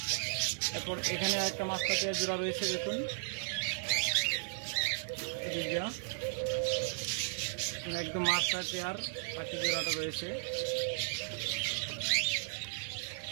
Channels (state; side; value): silent; left; digital silence